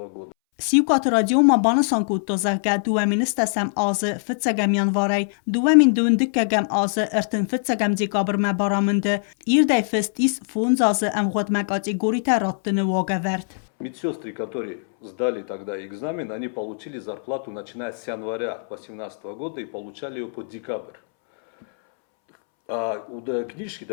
Սիուկատ ռադիոմա բանսան կուտո զարկա դուամին ստասամ ազը ֆծագամ յանվարայ դուամին դունդկագամ ազը ըրտն ֆծագամ դեկաբրմա բարամնդը իրդայ фестис фунзазы амготма категория раттыны вогаварт. Медсестры, которые сдали тогда экзамен, они получили зарплату начиная с января 2018 года и получали ее по декабрь. А книжки,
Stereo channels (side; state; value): right; silent; 64 dB below the other